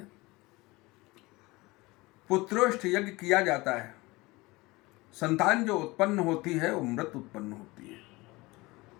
पुत्रोष्ठ यज्ञ किया जाता है। संतान जो उत्पन्न होती है वो मृत उत्पन्न होती है।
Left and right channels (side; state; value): right; quieter; 22.2 dB